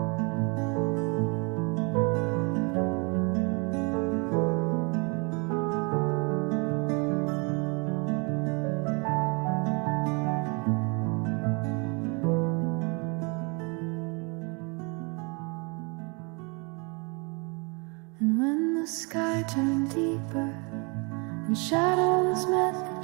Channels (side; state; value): left; quieter; 32.1 dB